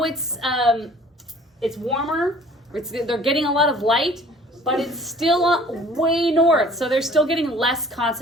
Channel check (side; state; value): both; normal; correlation 0.51